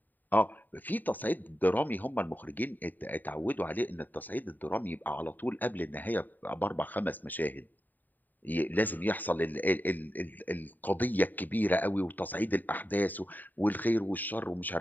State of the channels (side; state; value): right; late; 0.088 ms